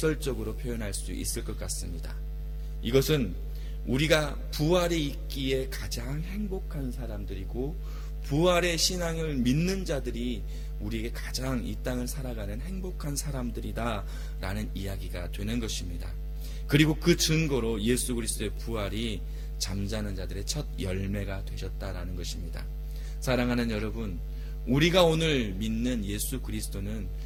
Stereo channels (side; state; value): both; identical; correlation 1.00